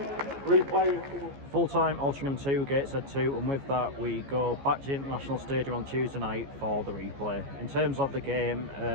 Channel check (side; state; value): left; late; 14 ms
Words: replay. Full-time Altrincham 2, Gateshead 2, and with that we go back to the International Stadium on Tuesday night for the replay. In terms of the game,